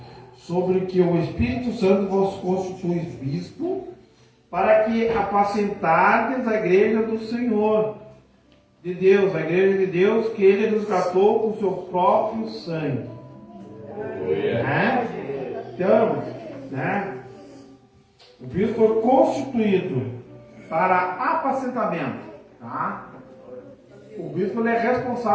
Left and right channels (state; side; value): identical; both; correlation 1.00